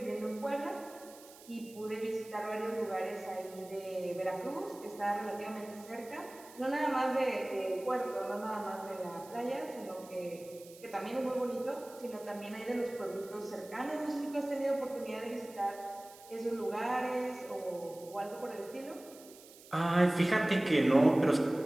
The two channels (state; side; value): noise; right; hiss, 20 dB below the sound